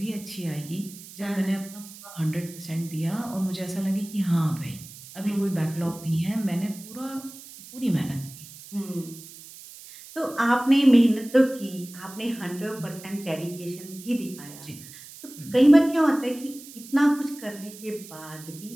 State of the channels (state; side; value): noise; right; hiss, 17 dB below the sound